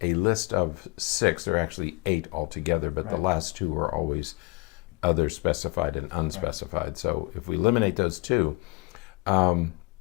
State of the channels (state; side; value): quieter; right; 25.6 dB